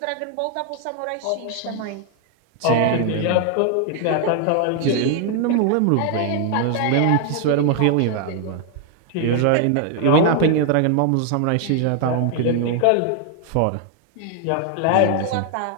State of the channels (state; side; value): different; both; correlation 0.00